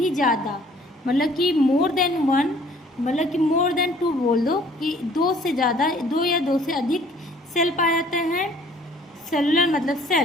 ज़्यादा, मतलब कि मोर देन वन मतलब कि मोर देन टू बोल दो, कि दो से ज़्यादा, दो या दो से अधिक सेल पाया जाता है। सेलुलर मतलब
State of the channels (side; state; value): both; normal; correlation 0.56